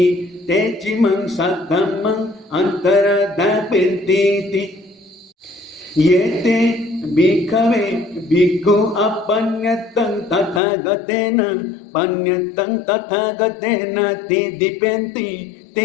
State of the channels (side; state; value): right; drops out; at 10.6 s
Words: ते चिमं सद्धम्मं अन्तरधापिन्तीति ये ते भिक्खवे भिक्खु अपन्यतं तथागतेन पन्यतं तथागतेन दीदिपेन्ति